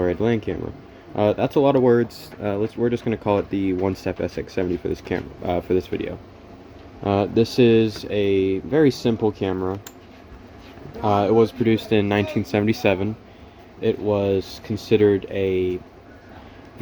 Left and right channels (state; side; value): identical; both; correlation 1.00